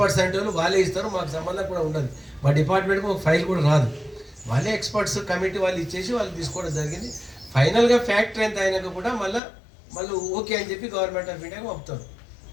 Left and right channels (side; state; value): right; drops out; at 9.4 s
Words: అంటే వాళ్ళే ఇస్తారు, మాకు సంబంధం కూడా ఉండదు. మా డిపార్ట్మెంట్కి ఒక ఫైల్ కూడా రాదు. వాళ్ళే ఎక్స్పర్ట్స్ కమిటీ వాళ్ళు ఇచ్చేసి వాళ్ళు తీసుకోవడం జరిగింది. ఫైనల్గా ఫ్యాక్టరీ ఎంత అయినాక కూడా మళ్ళీ ఓకే అని చెప్పి గవర్నమెంట్ ఆఫ్ ఇండియాకి పంపుతారు.